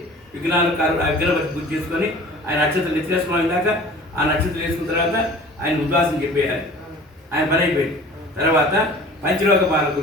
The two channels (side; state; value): both; normal; correlation 0.44